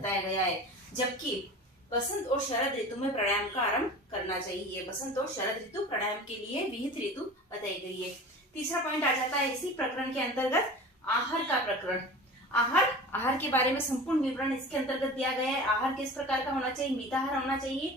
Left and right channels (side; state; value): both; normal; correlation 0.36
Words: गया है। जबकि बसंत और शरद ऋतु में प्राणायाम का आरंभ करना चाहिए। बसंत और शरद ऋतु प्राणायाम के लिए विहित ऋतु बताई गई है। तीसरा पॉइंट आ जाता है इसी प्रकरण के अंतर्गत आहार का प्रकरण। आहार के बारे में संपूर्ण विवरण इसके अंतर्गत दिया गया है। आहार किस प्रकार का होना चाहिए? मिताहार होना